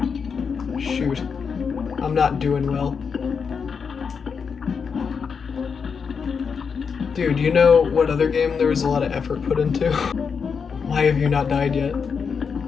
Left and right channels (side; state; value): right; quieter; 6.0 dB